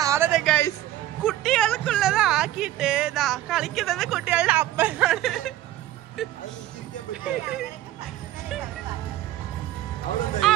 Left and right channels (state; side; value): quieter; left; 14.0 dB